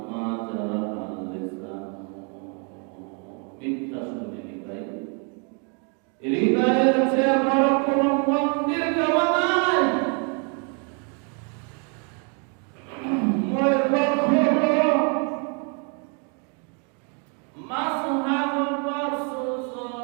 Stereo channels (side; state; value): left; quieter; 38.1 dB